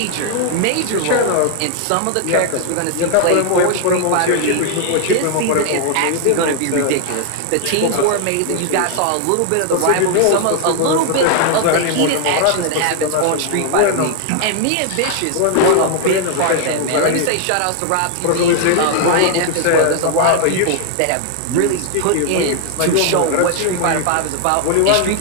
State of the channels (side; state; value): both; different; correlation 0.00